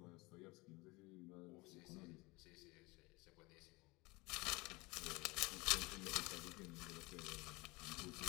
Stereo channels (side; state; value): right; quieter; 24.0 dB